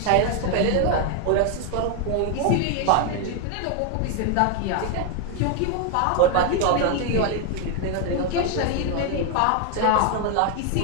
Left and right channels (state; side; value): different; both; correlation 0.01